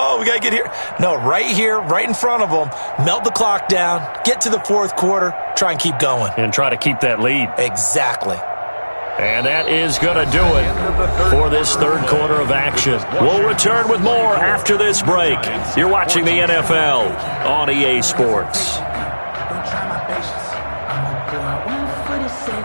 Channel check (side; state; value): both; inverted; correlation -1.00